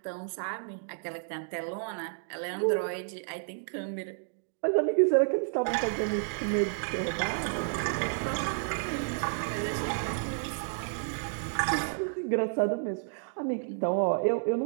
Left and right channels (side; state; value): left; silent; digital silence